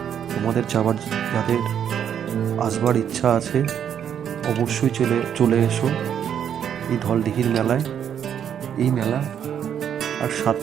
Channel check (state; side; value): quieter; left; 8.8 dB